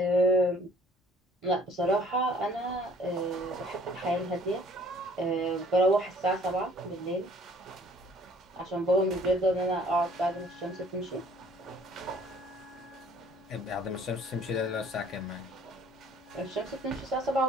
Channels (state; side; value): normal; both; correlation 0.56